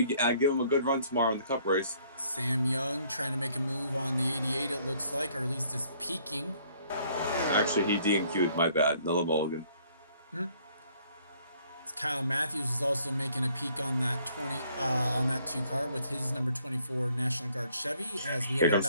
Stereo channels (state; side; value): inverted; both; correlation -0.63